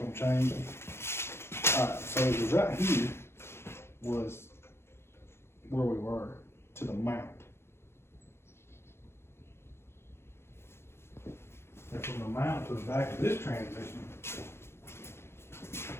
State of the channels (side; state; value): right; late; 0.12 ms